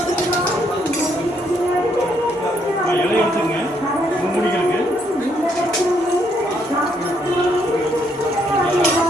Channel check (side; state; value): both; normal; correlation 0.72